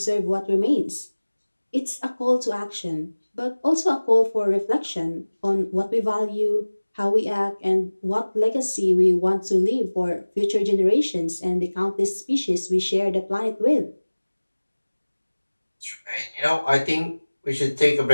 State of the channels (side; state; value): both; inverted; correlation -1.00